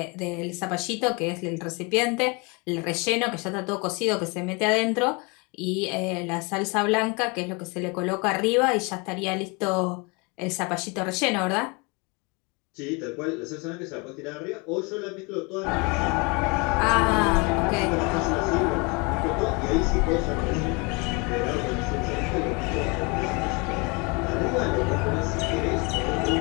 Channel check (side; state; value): right; quieter; 29.6 dB